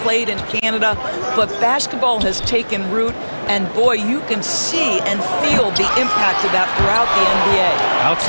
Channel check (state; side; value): inverted; both; correlation -1.00